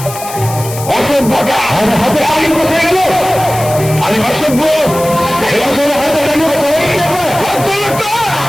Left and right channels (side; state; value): left; noise; hiss, 12 dB below the sound